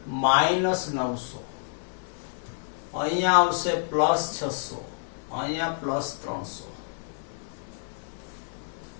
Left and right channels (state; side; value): silent; right; 59 dB below the other